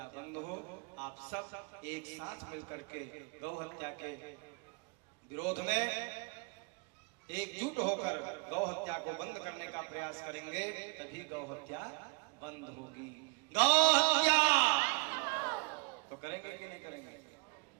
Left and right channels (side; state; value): left; quieter; 31.7 dB